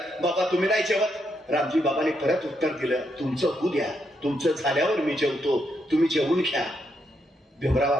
बाबा तुम्ही नाही जेवत. रामजी बाबाने परत उत्तर दिलं, तुमचं होऊ द्या, तुमचं झाल्यावर मी जेवतो, तुम्ही जेवून घ्या. भीमराव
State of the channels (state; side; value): normal; both; correlation 0.79